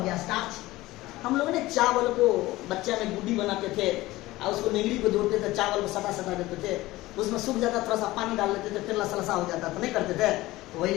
गया स्टार्च, हम लोग ने चावल को बच्चा में गुड्डी बनाते थे और उसको निगड़ी को जोड़ते थे, चावल को सटा सटा देते थे, उसमें सूख जाता, थोड़ा सा पानी डाल देते थे, फिर लसलसा हो जाता, तो नहीं करते थे। तो वही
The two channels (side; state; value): right; quieter; 18.2 dB